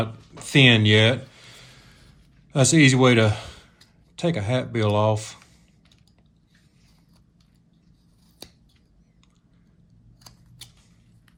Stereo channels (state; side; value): identical; both; correlation 1.00